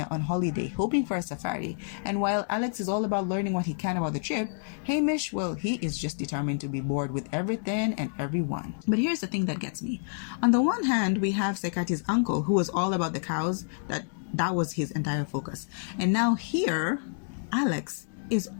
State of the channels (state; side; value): silent; right; digital silence